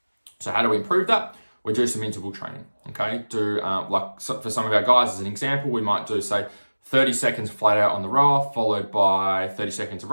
So how do we improve that? We do some interval training. Okay, for some of our guys as an example, we might do say 30 seconds flat out on the rower followed by 30 seconds of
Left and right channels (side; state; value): both; inverted; correlation -1.00